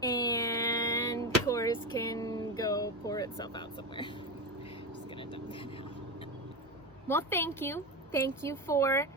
and Coors can go pour itself out somewhere. Just gonna dump that out. Well, thank you. Thank you for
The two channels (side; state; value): both; normal; correlation 0.18